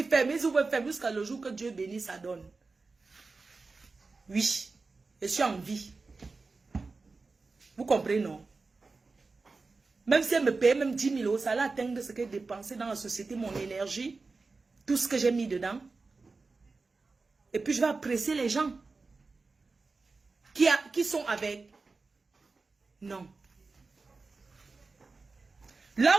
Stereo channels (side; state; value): left; quieter; 4.0 dB